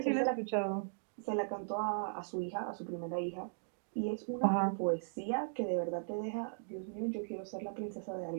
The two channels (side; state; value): left; silent; digital silence